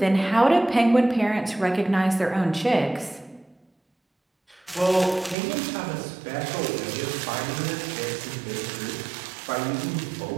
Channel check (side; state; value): left; drops out; at 5.4 s